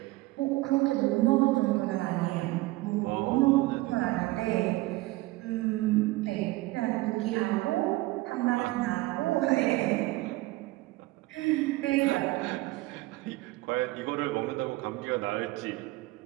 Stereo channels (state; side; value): quieter; left; 20.0 dB